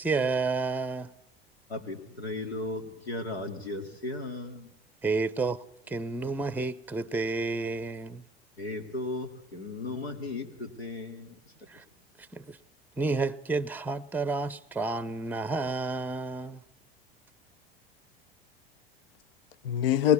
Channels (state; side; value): normal; both; correlation 0.47